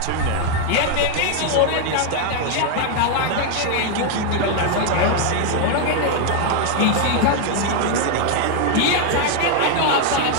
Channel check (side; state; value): both; different; correlation 0.00